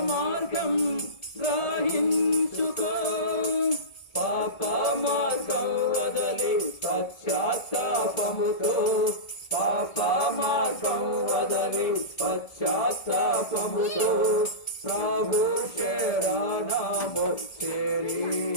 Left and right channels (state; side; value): late; right; 1.7 ms